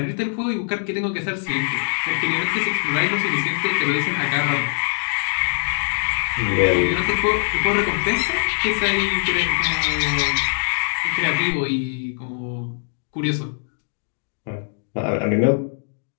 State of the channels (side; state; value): right; silent; digital silence